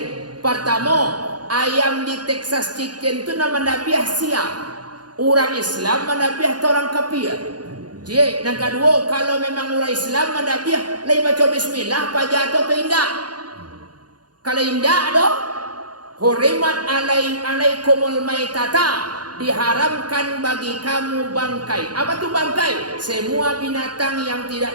Pertama, ayam di Texas Chicken tu nama nabiah siap. Orang Islam manabiah atau orang kafir. Jadi, yang kedua, kalau memang orang Islam manabiah, lain baca bismillah, apa jatuh tu indah. Kalau indah doh, hurimat alaikumul maitata, diharamkan bagi kamu bangkai. Apa tu bangkai? Semua binatang yang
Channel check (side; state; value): left; late; 0.70 ms